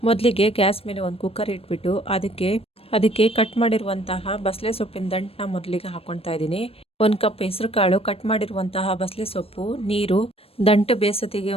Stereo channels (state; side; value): late; right; 0.28 ms